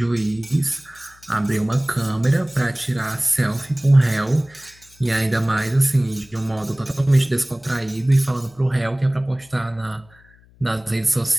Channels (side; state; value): left; noise; hum, 28 dB below the sound